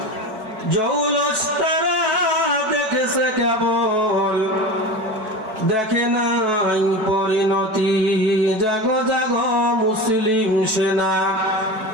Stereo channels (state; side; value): late; left; 4.6 ms